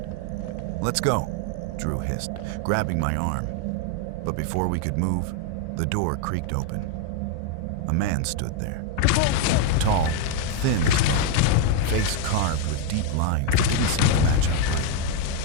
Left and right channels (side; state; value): both; different; correlation 0.01